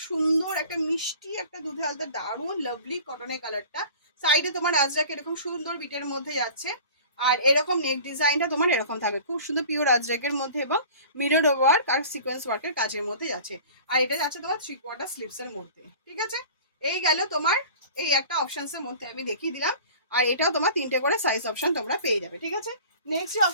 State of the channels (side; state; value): both; inverted; correlation -0.42